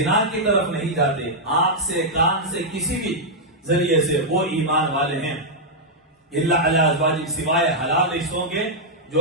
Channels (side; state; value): both; normal; correlation -0.06